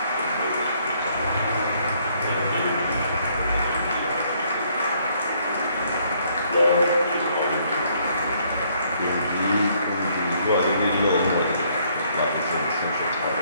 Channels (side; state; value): both; inverted; correlation -0.67